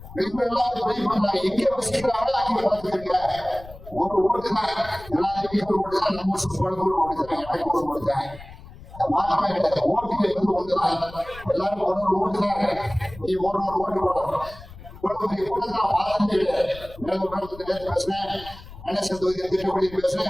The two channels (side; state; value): left; noise; rumble, 17 dB below the sound